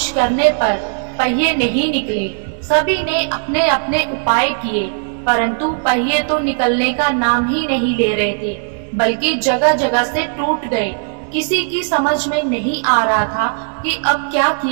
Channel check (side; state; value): left; silent; digital silence